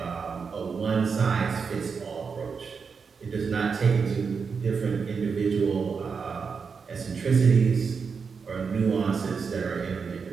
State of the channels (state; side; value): quieter; left; 5.6 dB